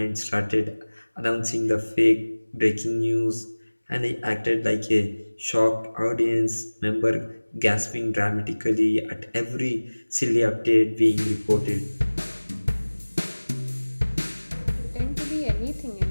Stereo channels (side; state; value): both; inverted; correlation -1.00